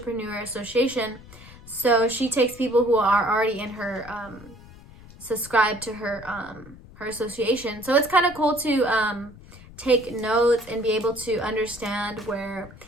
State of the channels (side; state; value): left; noise; rumble, 19 dB below the sound